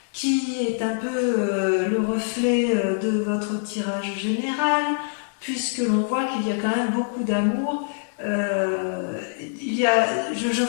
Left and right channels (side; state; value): right; silent; digital silence